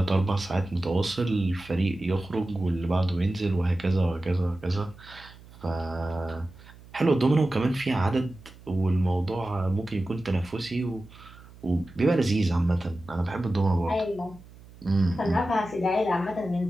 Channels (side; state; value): right; noise; hum, 21 dB below the sound